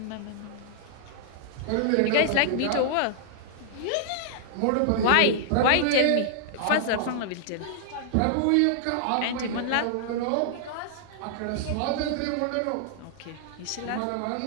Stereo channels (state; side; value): different; both; correlation -0.01